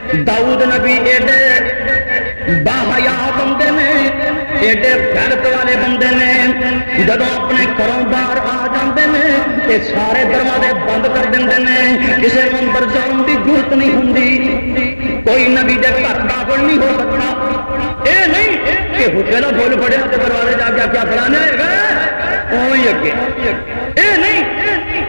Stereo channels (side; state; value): both; inverted; correlation -1.00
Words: داؤد نبی ایڈے باحیا بندے نے ایڈے غیرت والے بندے نے جب اپنے گھروں باہر آ جاندے نے تے سارے دروازے بند کر دیندے نے کسی کو اندر جان کی ضرورت نہیں ہوندی. کوئی نبی دے گھر داخل نہیں ہو سکتا. اے نہیں کہ حجے نہ بول پڑے تو دروازے جا کے کیا فلانا ہے وہی اگے. اے نہیں